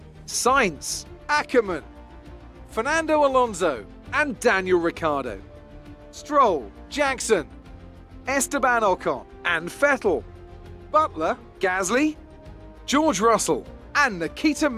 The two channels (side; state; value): both; identical; correlation 1.00